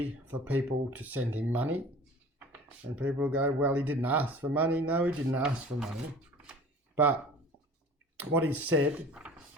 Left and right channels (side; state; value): both; normal; correlation 0.44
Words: for people to send him money. And people go, well, he didn't ask for money. No, he didn't ask for money. But what he said